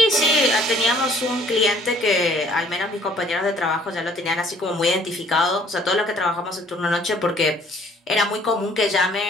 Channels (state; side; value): normal; both; correlation 0.58